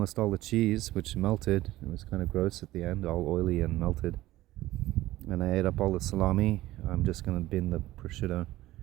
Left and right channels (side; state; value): left; quieter; 16.4 dB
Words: all the cheese, which melted. It was kind of gross at the end, all oily and melted. And I ate up all the salami. I'm just going to bin the prosciutto.